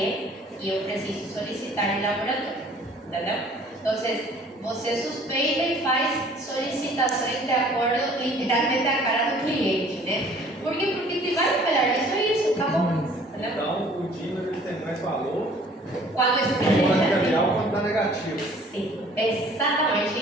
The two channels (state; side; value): normal; both; correlation 0.53